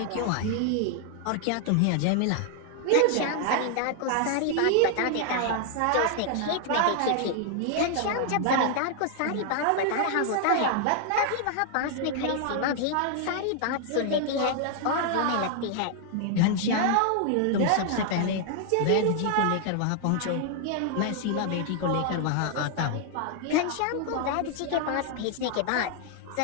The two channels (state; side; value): different; both; correlation 0.00